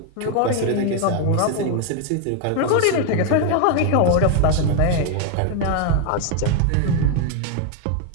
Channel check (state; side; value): different; both; correlation 0.01